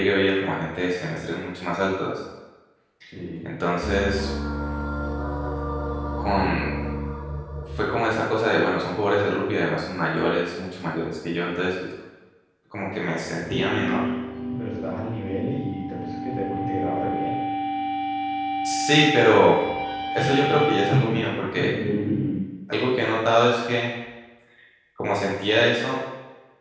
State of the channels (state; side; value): identical; both; correlation 1.00